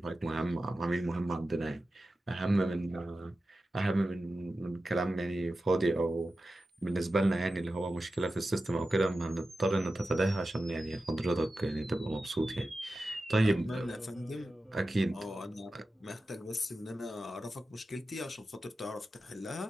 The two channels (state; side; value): normal; both; correlation 0.93